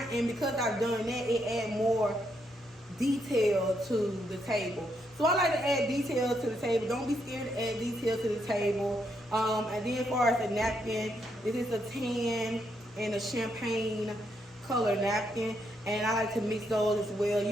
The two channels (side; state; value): both; normal; correlation 0.77